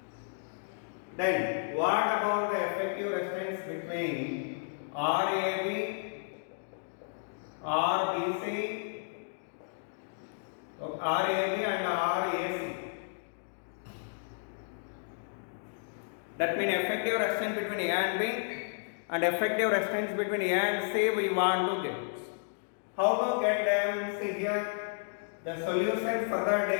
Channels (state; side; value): silent; right; digital silence